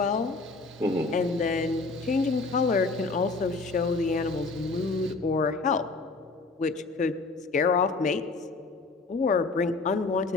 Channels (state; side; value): quieter; right; 3.7 dB